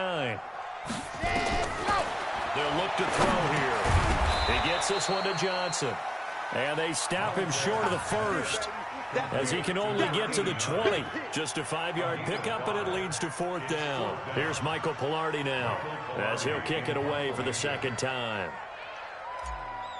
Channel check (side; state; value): both; identical; correlation 1.00